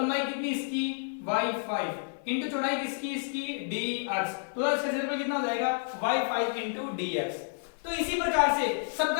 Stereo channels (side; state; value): right; silent; 58 dB below the other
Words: कितनी इसकी? y5 इंटू चौड़ाई किसकी? इसकी dx। तो इसका क्षेत्रफल कितना हो जाएगा? y5 into dx। तो इसी प्रकार से